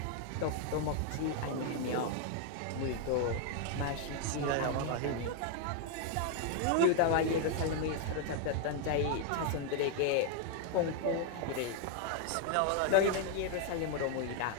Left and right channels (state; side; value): different; both; correlation 0.00